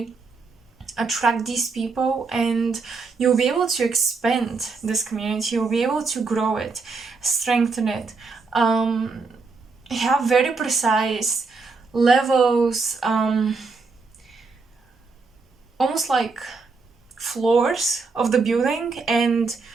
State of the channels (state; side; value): quieter; left; 4.4 dB